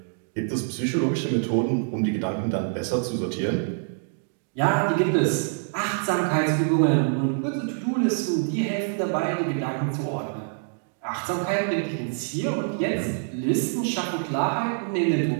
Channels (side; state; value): left; silent; digital silence